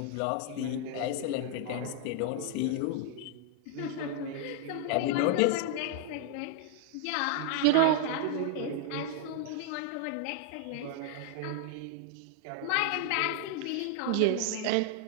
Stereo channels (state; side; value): different; both; correlation 0.00